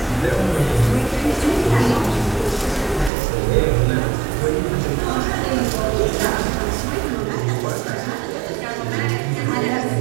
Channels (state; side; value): drops out; left; at 3.1 s